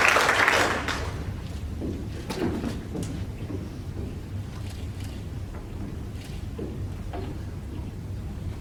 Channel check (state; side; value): identical; both; correlation 1.00